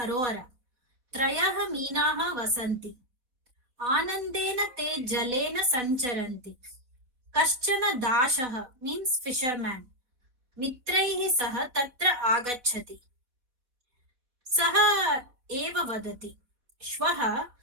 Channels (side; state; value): left; late; 4.0 ms